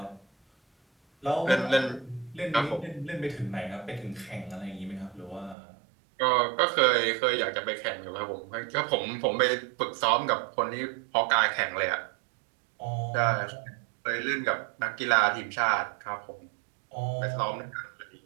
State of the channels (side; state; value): left; drops out; at 5.6 s